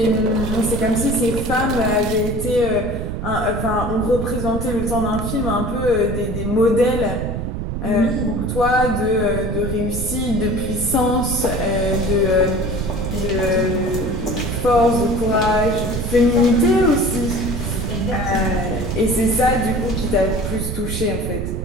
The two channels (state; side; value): noise; right; rumble, 4 dB below the sound